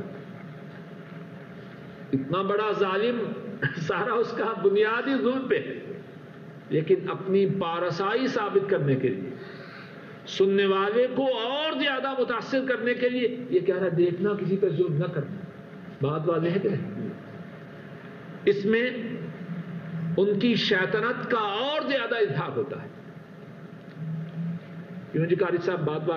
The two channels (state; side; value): identical; both; correlation 1.00